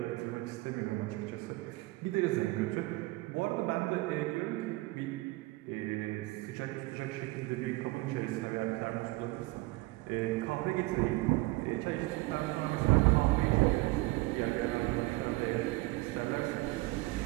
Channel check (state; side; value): quieter; left; 21.7 dB